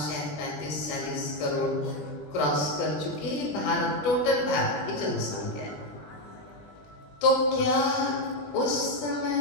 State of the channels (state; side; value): late; right; 20 ms